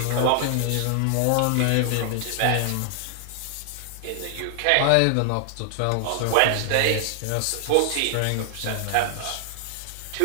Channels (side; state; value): both; different; correlation 0.00